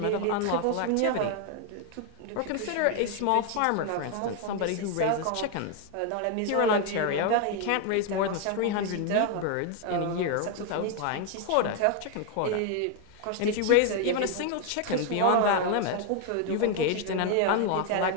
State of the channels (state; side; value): different; both; correlation 0.00